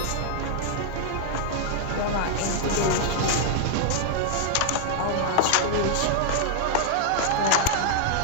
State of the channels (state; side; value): different; both; correlation -0.01